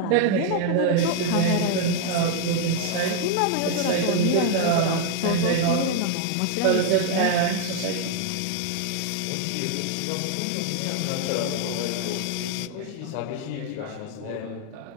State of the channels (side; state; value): both; different; correlation 0.01